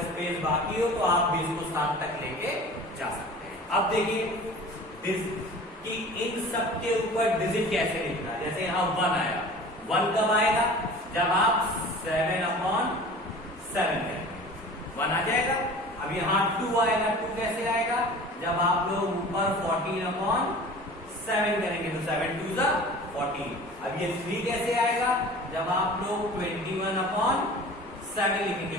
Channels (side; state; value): both; normal; correlation 0.41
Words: स्पेस बाकी हो तो आप भी इसको 7 तक लेके जा सकते हैं। अब देखिए कि इन सब के ऊपर डिजिट कैसे लिखना। जैसे यहां 1 आया, 1 कब आएगा? जब आप 7/7 करेंगे, 1 आ जाएगा। अब यहां 2 आएगा, 2 कैसे आएगा? जब आप लोग ऊपर 14/7 करेंगे, तो 7 2 ज़ा 14। अब ये 3 कैसे आएगा? जब आप लोग 21/7 लिखेंगे।